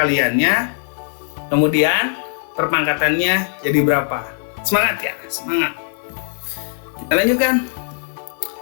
Kemudian perpangkatannya jadi berapa? Semangat ya, semangat. Kita lanjutkan.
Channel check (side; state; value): right; silent; 66 dB below the other